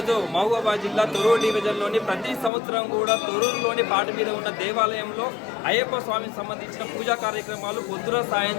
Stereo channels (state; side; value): drops out; right; at 2.5 s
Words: మహబూబాబాద్ జిల్లా తొర్రూరు డివిజన్లోని ప్రతి సంవత్సరం కూడా తొర్రూరులోని పాట మీద ఉన్న దేవాలయంలో అయ్యప్ప స్వామికి సంబంధించిన పూజా కార్యక్రమాలు పొద్దున